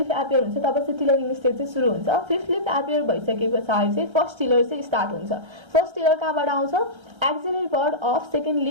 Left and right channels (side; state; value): left; late; 1.3 ms